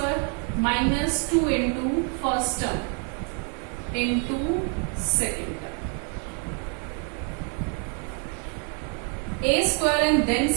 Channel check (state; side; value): quieter; left; 40.0 dB